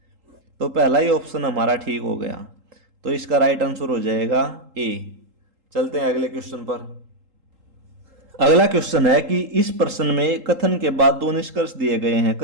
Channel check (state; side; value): late; left; 3.8 ms